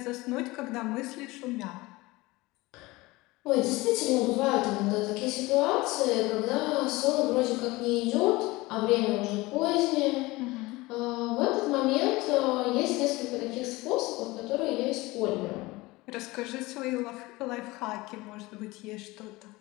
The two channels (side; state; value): right; quieter; 21.2 dB